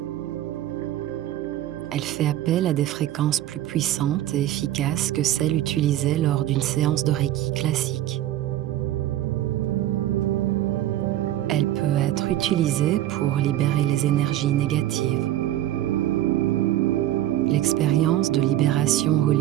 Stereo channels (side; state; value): left; quieter; 13.3 dB